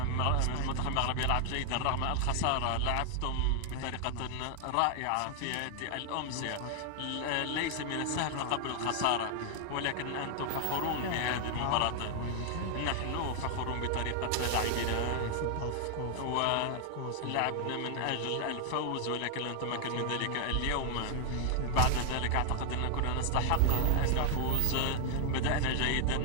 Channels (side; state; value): both; different; correlation 0.00